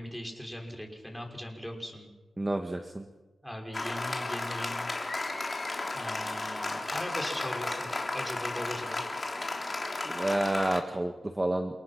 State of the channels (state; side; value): normal; both; correlation 0.96